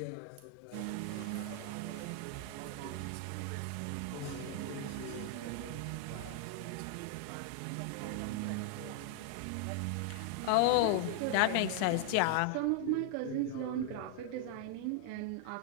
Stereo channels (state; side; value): different; both; correlation 0.00